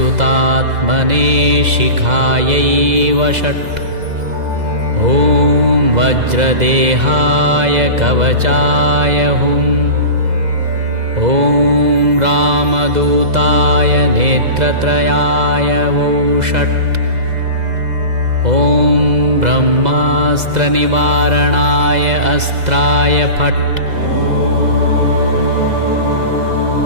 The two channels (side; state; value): left; late; 2.0 ms